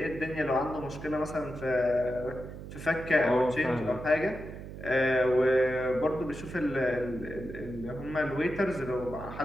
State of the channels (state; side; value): noise; right; hum, 11 dB below the sound